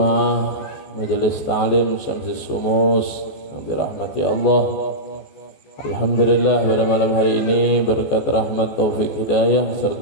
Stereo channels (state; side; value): late; right; 14 ms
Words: Majelis Ta'lim Syamsis Sumus yang dirahmati Allah, alhamdulillah pada malam hari ini berkat rahmat taufik hidayah